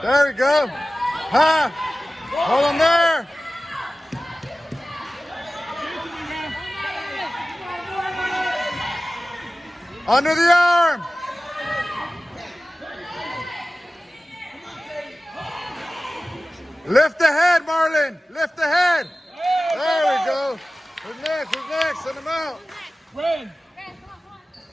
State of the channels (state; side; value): normal; both; correlation 0.96